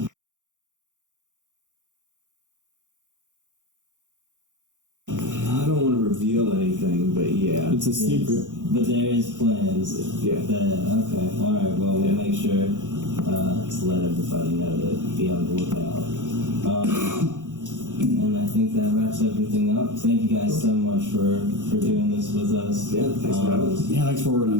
I don't want to reveal anything, but yeah. It's a secret. But there is plans. Yeah. Okay. All right. Well, we'll make sure to let everybody know to be on the lookout. And I think that wraps everything up. Thank you guys so much for doing this with us. Yeah, thanks for having us. Yeah, thanks for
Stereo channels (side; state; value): left; late; 0.86 ms